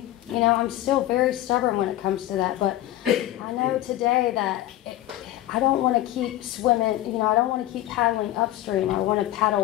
You know, I'm still very stubborn when it comes to that, but I know today that I don't want to keep swimming, you know, I don't want to keep paddling upstream. I want to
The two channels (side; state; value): right; quieter; 14.4 dB